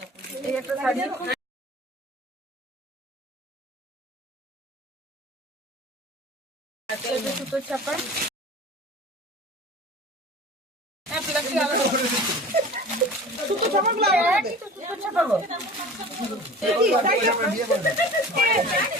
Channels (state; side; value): normal; both; correlation 0.40